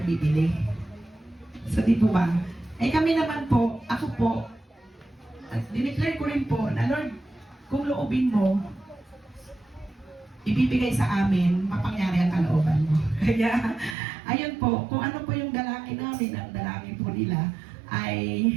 bibili. So di po ba? Eh kami naman po, ako po, at dineclare ko rin po na Lord, kung loobin mo, ibibigay sa amin, mapangyari ang kalooban mo. Kaya, ayun po, kung ano po yung dalangin namin, ang dalangin po nila, ay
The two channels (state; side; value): drops out; left; at 14.0 s